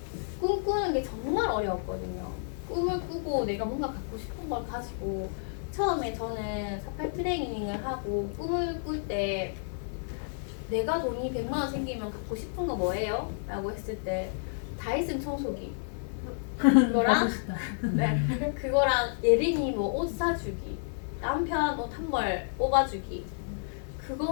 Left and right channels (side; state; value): right; silent; digital silence